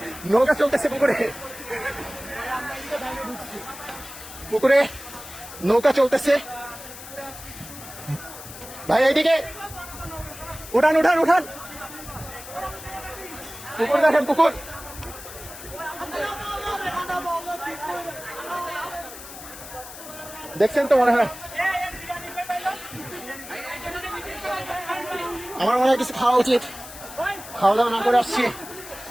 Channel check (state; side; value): noise; left; hiss, 14 dB below the sound